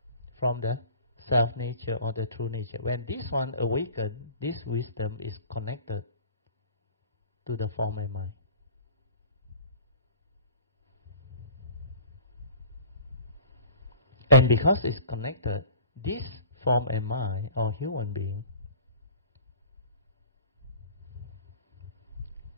from the self-nature or the true nature. When this one awakens, this wisdom is connected to the form and mind. And because it's connected, this form and mind or human being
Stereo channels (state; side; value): inverted; both; correlation -0.44